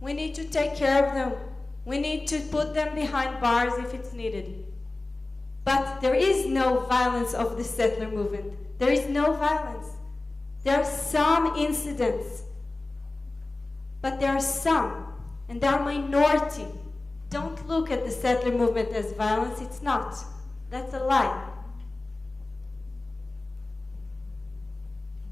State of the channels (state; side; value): quieter; right; 3.1 dB